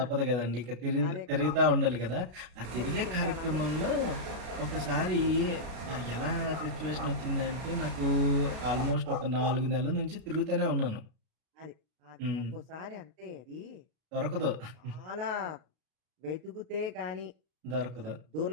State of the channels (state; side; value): late; left; 33 ms